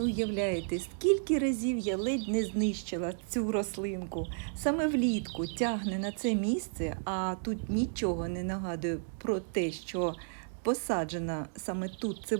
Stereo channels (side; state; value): left; silent; digital silence